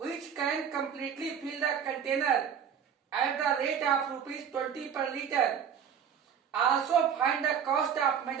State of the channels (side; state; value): left; quieter; 8.0 dB